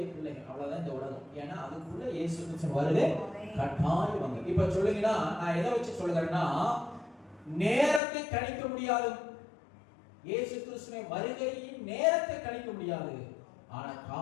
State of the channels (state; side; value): drops out; right; at 8.0 s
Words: பிள்ளைகள், அவ்வளவுதான் இந்த உலகம். ஏன்னா அதுக்குள்ள இயேசு கிறிஸ்து வருகை கட்டாயம் வாங்க. இப்ப சொல்லுங்கன்னா, நான் எதை வச்சு சொல்லுகிறேன்னா, நேரத்தை கணிக்க முடியாது. இயேசு கிறிஸ்துவின் வருகையின் நேரத்தை கணிக்க முடியாது, ஆனா